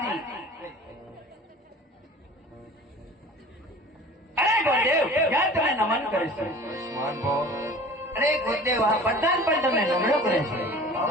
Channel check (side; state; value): both; normal; correlation 0.43